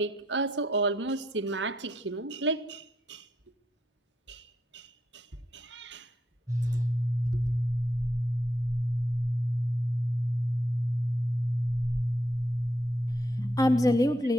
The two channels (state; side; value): normal; both; correlation 0.79